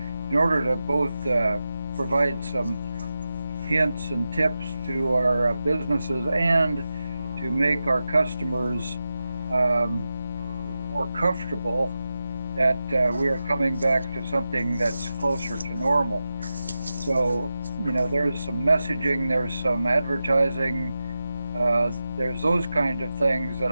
in order to both provide some hints and tips to our businesses and to make our customers more comfortable that we are coming back to something that's closer to normal. So, you know, there's some messaging, there's some advertising, there's those kind of things that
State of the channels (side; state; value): both; inverted; correlation -0.92